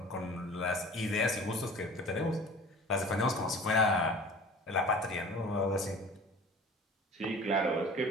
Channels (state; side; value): normal; both; correlation 0.43